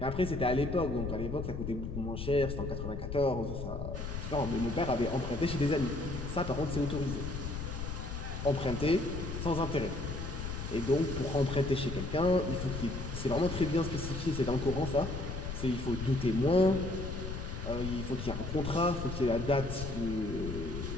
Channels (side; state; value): left; noise; rumble, 5 dB below the sound